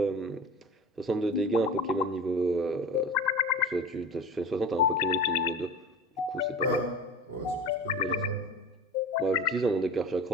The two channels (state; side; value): normal; both; correlation 0.34